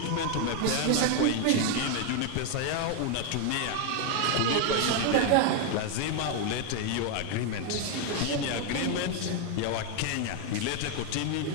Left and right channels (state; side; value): different; both; correlation 0.01